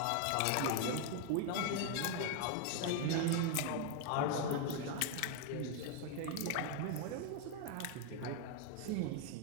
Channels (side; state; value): both; different; correlation 0.00